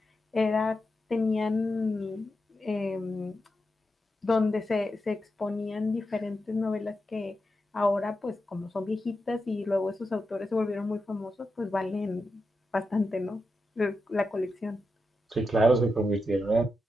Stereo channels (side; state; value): both; normal; correlation 0.88